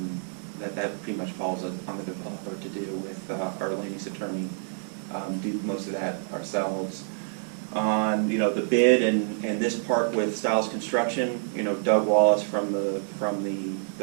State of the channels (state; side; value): silent; left; 60 dB below the other